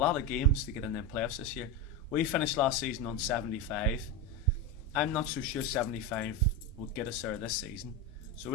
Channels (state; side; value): normal; both; correlation 0.15